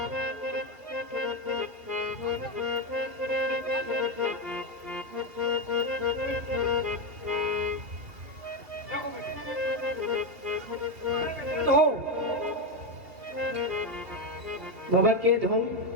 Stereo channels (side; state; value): left; late; 2.8 ms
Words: धो बाबा के धो